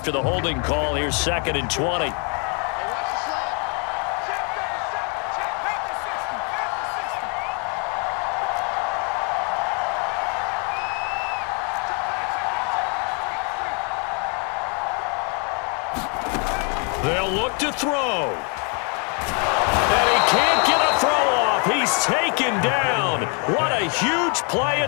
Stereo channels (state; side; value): quieter; right; 36.5 dB